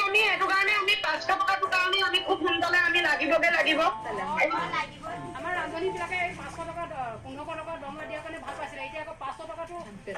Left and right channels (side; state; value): both; identical; correlation 1.00